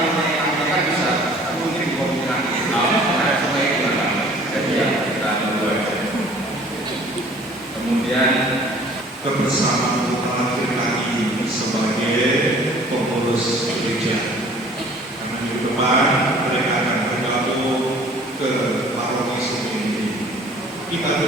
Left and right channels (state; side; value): normal; both; correlation 0.52